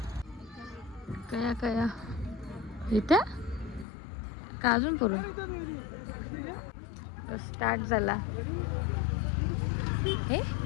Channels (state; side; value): drops out; right; at 3.9 s